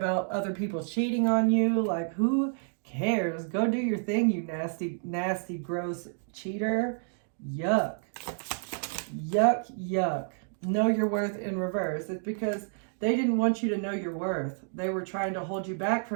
other people cheating on you. Like, who cares? Go do your thing, you nasty, nasty, gross cheater. Yuck. Yuck, yuck. Know your worth in reverse. It's because they didn't want you to know your worth. They were trying to hold you back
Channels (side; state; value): left; silent; digital silence